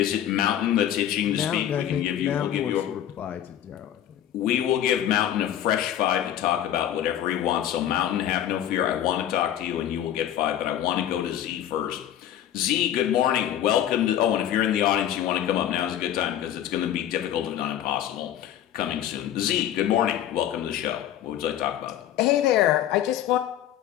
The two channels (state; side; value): quieter; right; 11.2 dB